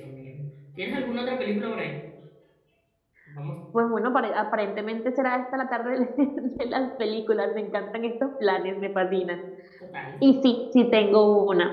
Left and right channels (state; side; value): identical; both; correlation 1.00